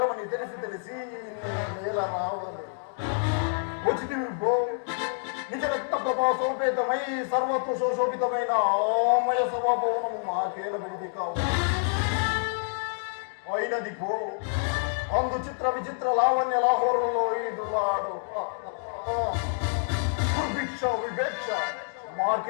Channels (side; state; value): right; silent; digital silence